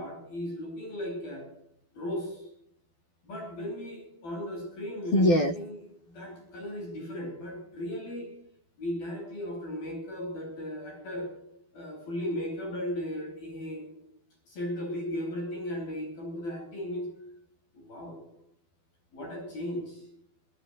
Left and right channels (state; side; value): late; right; 12 ms